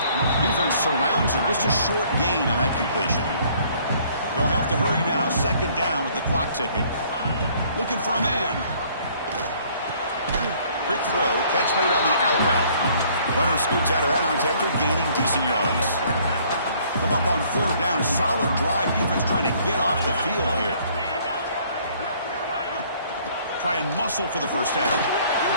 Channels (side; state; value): both; inverted; correlation -0.60